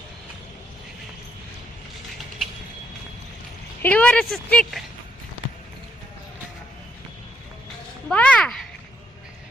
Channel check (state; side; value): normal; both; correlation 0.76